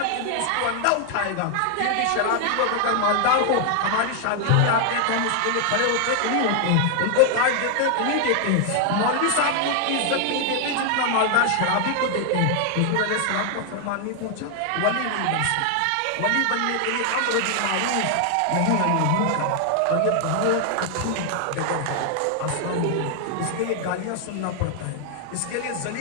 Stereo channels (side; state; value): both; different; correlation 0.00